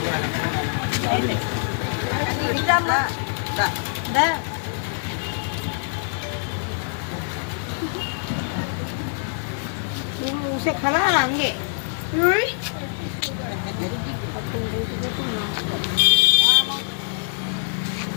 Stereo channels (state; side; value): silent; right; digital silence